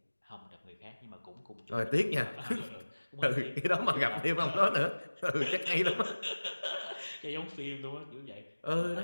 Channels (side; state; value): both; inverted; correlation -1.00